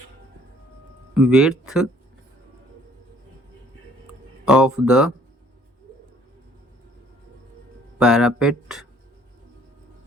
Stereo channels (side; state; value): both; normal; correlation 0.59